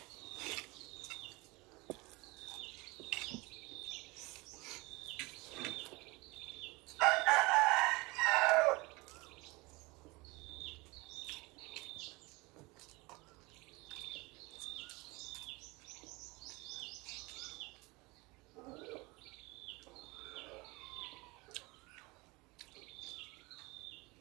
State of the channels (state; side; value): quieter; left; 24.4 dB